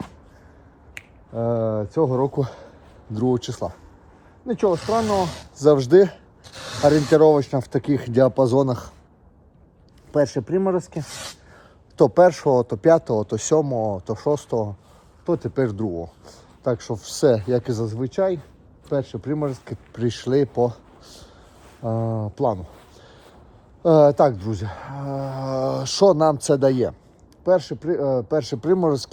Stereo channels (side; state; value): both; identical; correlation 1.00